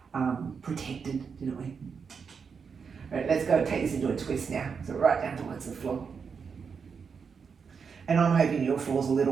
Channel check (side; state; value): left; quieter; 5.9 dB